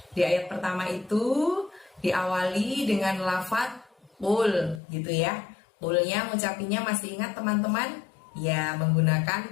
Di ayat pertama itu diawali dengan lafaz qul gitu ya. Qulnya ngucapinnya masih ingat teman-teman? Ya, menggunakan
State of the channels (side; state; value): right; drops out; at 4.8 s